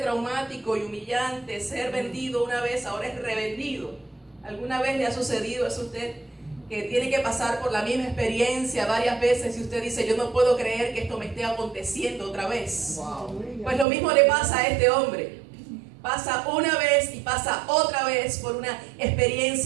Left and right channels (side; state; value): left; drops out; at 13.9 s